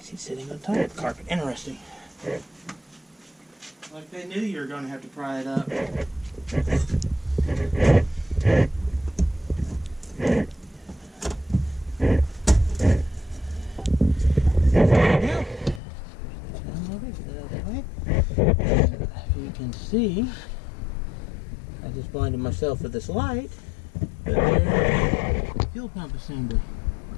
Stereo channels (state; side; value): drops out; right; at 15.8 s